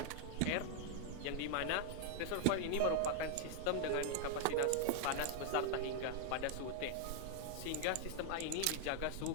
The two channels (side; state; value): both; different; correlation 0.00